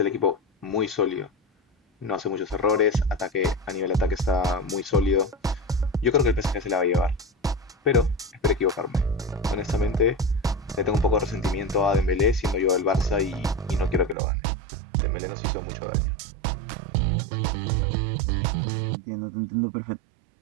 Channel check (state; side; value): drops out; left; at 14.2 s